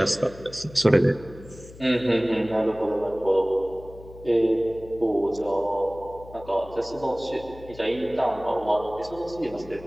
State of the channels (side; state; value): left; noise; hum, 18 dB below the sound